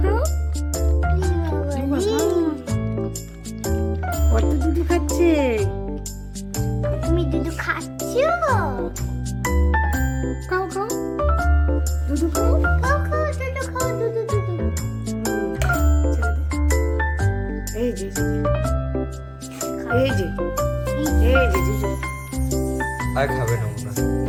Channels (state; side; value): identical; both; correlation 1.00